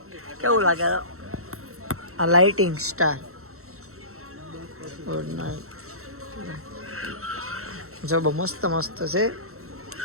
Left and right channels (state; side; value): late; left; 0.63 ms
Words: કેવું લાગે આ લાઇટિંગ સ્ટાર ગુડ નાઇટ જો બહુ મસ્ત મસ્ત છે.